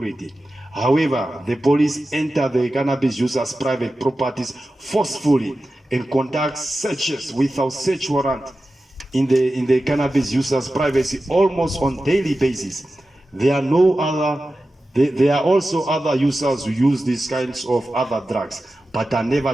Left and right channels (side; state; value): both; normal; correlation 0.93